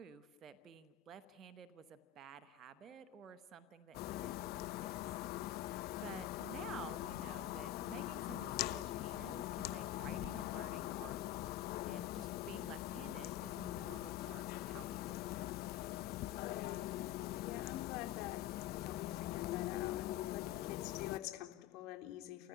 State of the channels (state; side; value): quieter; right; 11.6 dB